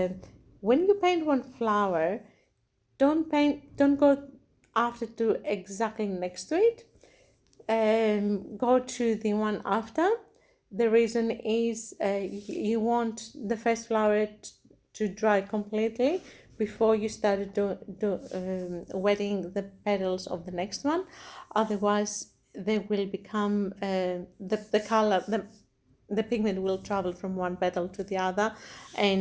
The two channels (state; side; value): identical; both; correlation 1.00